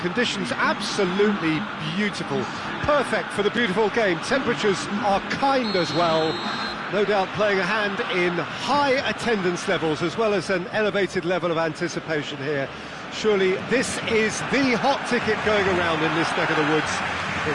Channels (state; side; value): identical; both; correlation 1.00